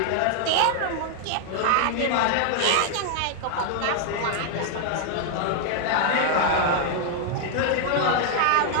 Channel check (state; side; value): different; both; correlation 0.00